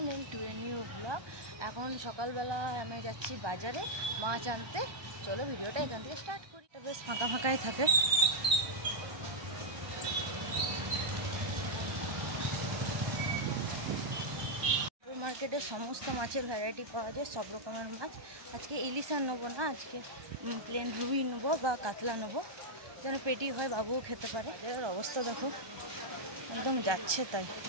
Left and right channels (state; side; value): late; left; 1.2 ms